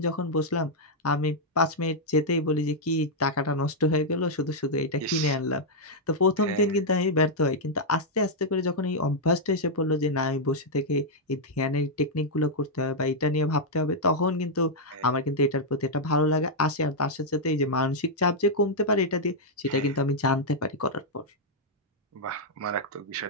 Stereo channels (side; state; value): both; normal; correlation -0.04